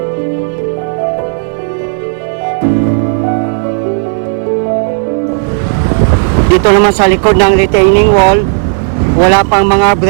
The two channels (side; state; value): left; silent; digital silence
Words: dito naman sa likod ng retaining wall, wala pang mga